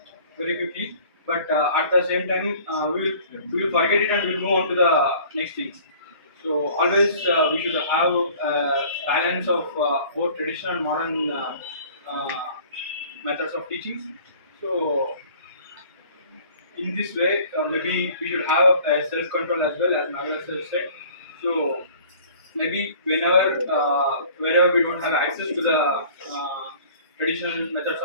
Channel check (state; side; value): inverted; both; correlation -0.49